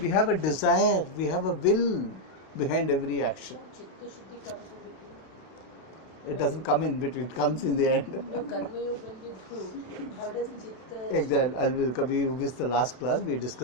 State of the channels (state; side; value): late; right; 32 ms